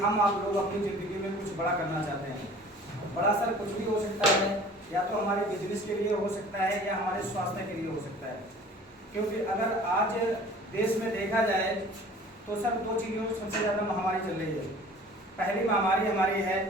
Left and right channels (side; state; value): both; normal; correlation 0.47